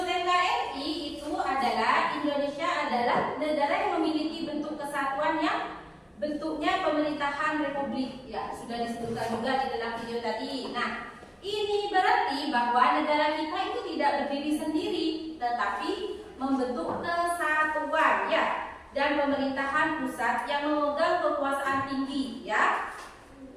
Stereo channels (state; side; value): identical; both; correlation 1.00